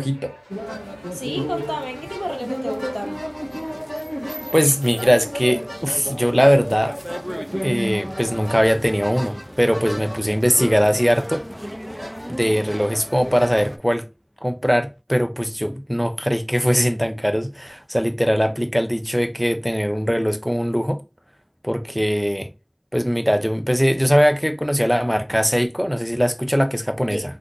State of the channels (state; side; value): identical; both; correlation 1.00